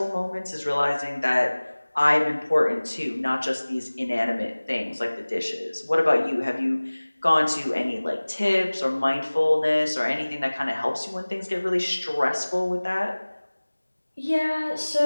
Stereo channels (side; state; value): both; inverted; correlation -1.00